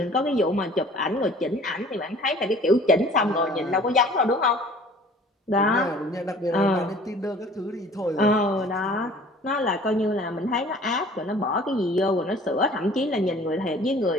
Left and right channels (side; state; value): both; normal; correlation 0.49